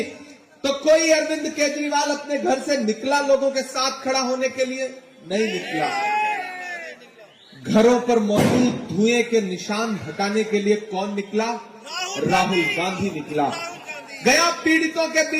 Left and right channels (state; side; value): identical; both; correlation 1.00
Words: तो कोई अरविंद केजरीवाल अपने घर से निकला लोगों के साथ खड़ा होने के लिए? नहीं निकला। घरों पर मौजूद धुएं के निशान हटाने के लिए कौन निकला? राहुल गांधी निकला। गया पीड़ितों के